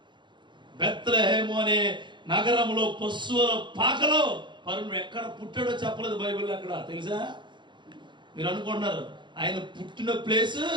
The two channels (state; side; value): late; left; 0.23 ms